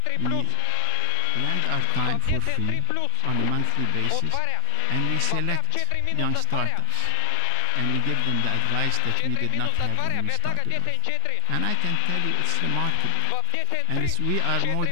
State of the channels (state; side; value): different; both; correlation 0.00